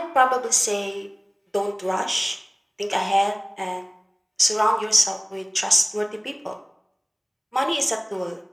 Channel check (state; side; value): identical; both; correlation 1.00